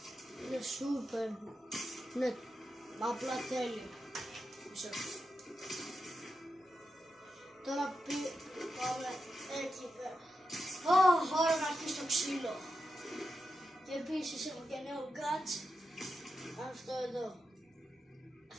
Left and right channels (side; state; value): both; normal; correlation 0.88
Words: Είναι super. Ναι, απλά τέλειο. Τώρα πάμε εκεί πέρα. Ώρα να αρχίσει το ξύλο. Και επίσης έχω και νέο gadget. Αυτό εδώ.